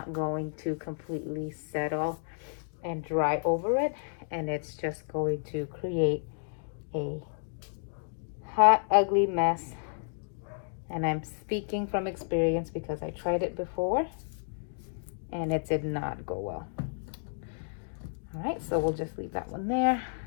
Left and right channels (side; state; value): right; silent; digital silence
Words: going to completely settle and dry over it, and it's just going to create a hot, ugly mess. And I'm speaking from experience because I tried it before and it did not go well. All right, so we'll just leave that one there.